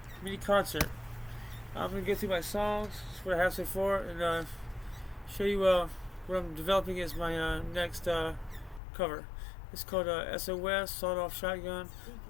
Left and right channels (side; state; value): right; drops out; at 8.8 s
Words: mini concert. I'm gonna go through my songs, that's what I have so far, and show you what I'm developing as my next cover. It's called SOS, Sawed Off Shotgun